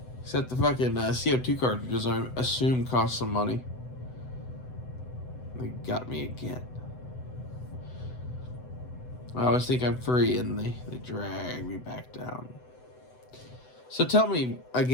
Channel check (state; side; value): late; right; 7.9 ms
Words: Except the fucking CO2 cartridges, I assume, cost some money. They got me again. I always think I'm free, and they drag me back down. So tell me,